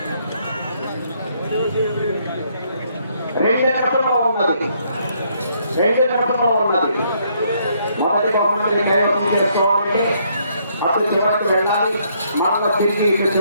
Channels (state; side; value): inverted; both; correlation -0.70